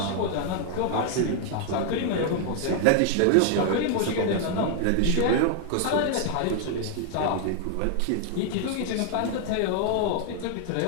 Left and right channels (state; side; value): different; both; correlation 0.00